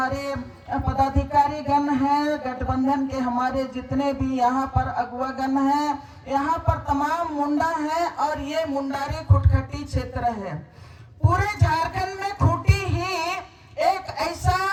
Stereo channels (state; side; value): identical; both; correlation 1.00